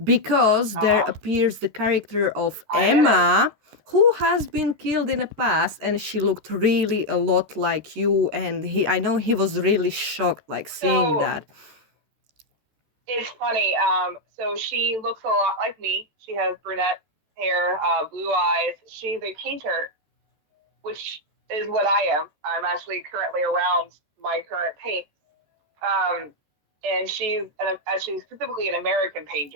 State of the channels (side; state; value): left; late; 13 ms